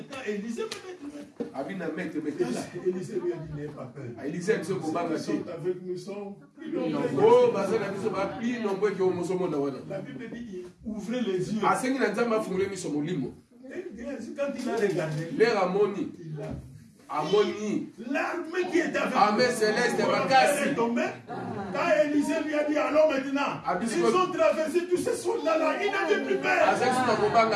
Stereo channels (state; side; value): identical; both; correlation 1.00